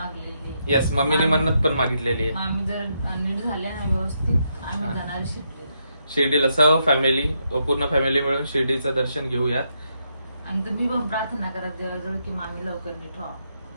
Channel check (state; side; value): inverted; both; correlation -0.79